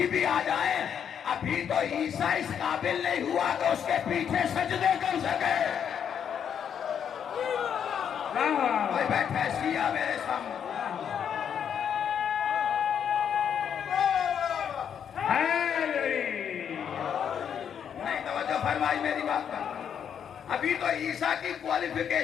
بھی آ جائیں. ابھی تو عیسیٰ اس قابل نہیں ہوا کہ اس کے پیچھے سجدے کر سکے. کوئی بیٹھا ہے شیعہ میرے سامنے. نہیں توجہ فرمائی میری بات کا. ابھی تو عیسیٰ کی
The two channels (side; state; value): right; quieter; 8.2 dB